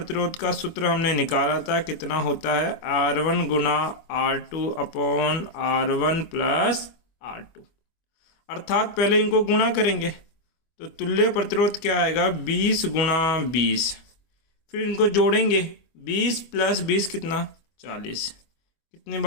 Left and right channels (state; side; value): late; right; 25 ms